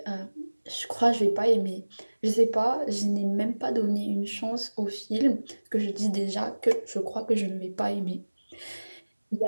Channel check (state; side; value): inverted; both; correlation -1.00